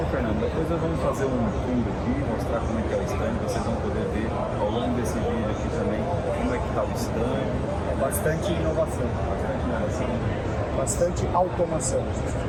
Fernando? Depois nós vamos fazer um tour aqui, mostrar como é que é o stand, vocês vão poder ver ao longo desse vídeo aqui também como é que está o stand. É bastante inovação, bastante automação,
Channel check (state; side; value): identical; both; correlation 1.00